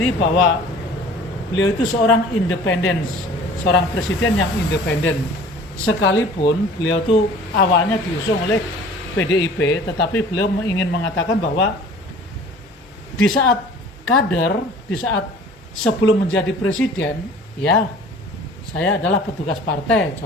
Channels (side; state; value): both; normal; correlation 0.47